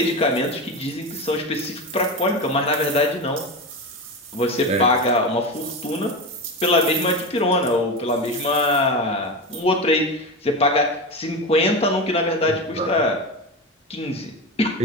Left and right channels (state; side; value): normal; both; correlation 0.21